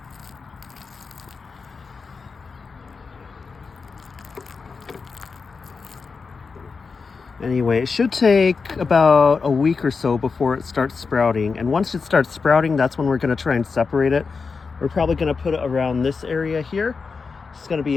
Anyway, it should take about a week or so before it starts sprouting. And once it starts sprouting, that's when we're going to try and separate it. We're probably going to put it around this area here. It's going to be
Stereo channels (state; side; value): quieter; right; 4.9 dB